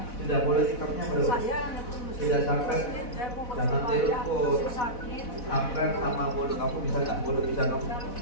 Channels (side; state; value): right; late; 4.1 ms